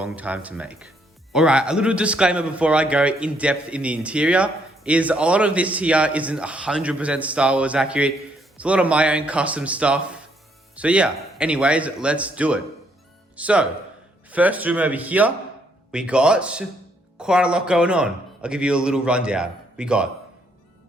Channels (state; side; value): normal; both; correlation 0.71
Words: time to make. All right, a little disclaimer before I go in depth in the interior is a lot of this here isn't 100% Star Wars accurate. It's a lot of my own custom stuff. So yeah, anyways, let's do it. So, first room over here, we got quite a lot going on. I'll give you a little rundown. We got